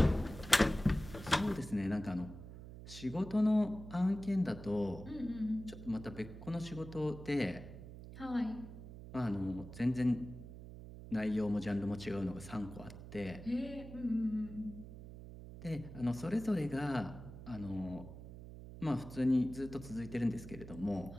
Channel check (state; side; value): noise; right; hum, 13 dB below the sound